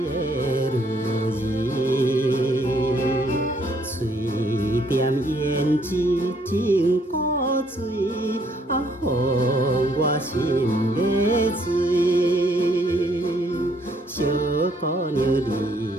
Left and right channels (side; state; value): both; normal; correlation 0.67